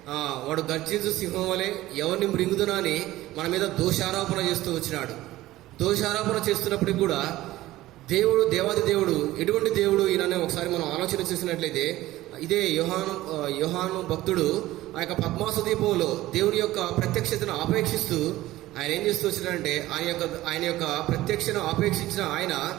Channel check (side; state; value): left; quieter; 16.4 dB